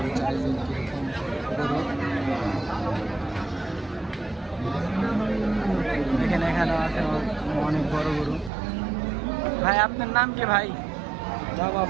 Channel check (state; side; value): drops out; left; at 8.5 s